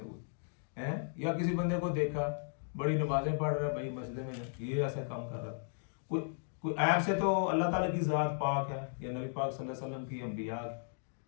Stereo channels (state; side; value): silent; right; digital silence